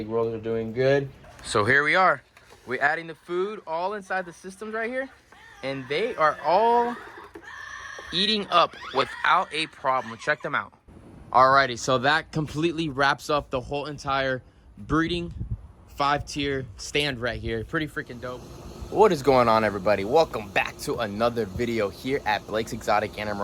rolls are doing good. So here we are. We're adding the food all inside the systems right here. And they are all eating up without a problem. Check them out. Alrighty, so that completely wraps up the whole entire breeding 5-tier stand right here. Pretty freaking dope. What is going on, everybody? Welcome back to another video here at Blake's Exotic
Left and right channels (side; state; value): both; identical; correlation 1.00